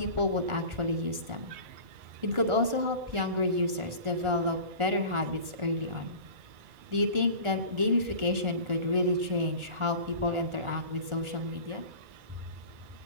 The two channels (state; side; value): late; left; 1.4 ms